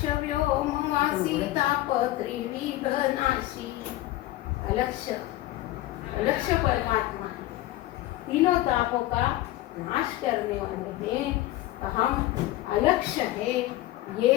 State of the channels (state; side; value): quieter; right; 16.2 dB